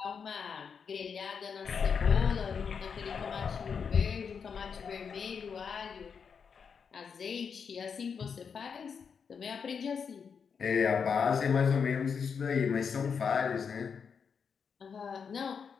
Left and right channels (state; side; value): quieter; right; 6.3 dB